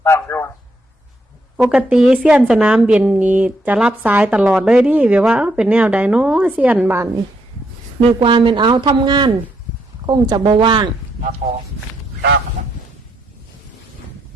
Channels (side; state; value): both; normal; correlation 0.76